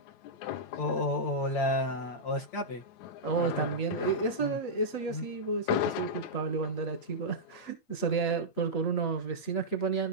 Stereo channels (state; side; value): late; right; 8.2 ms